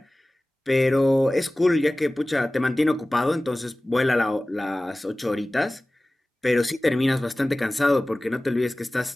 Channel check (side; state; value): both; normal; correlation 0.98